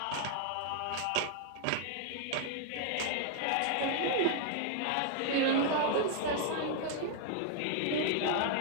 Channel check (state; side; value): different; both; correlation 0.00